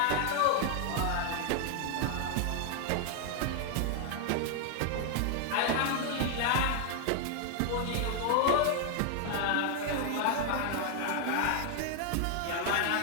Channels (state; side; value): different; both; correlation 0.00